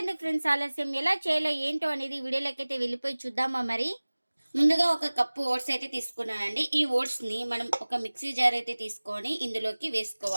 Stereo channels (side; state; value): both; inverted; correlation -1.00